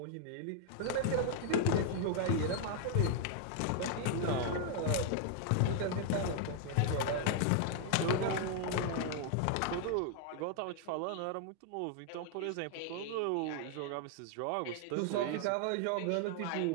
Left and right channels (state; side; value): different; both; correlation 0.00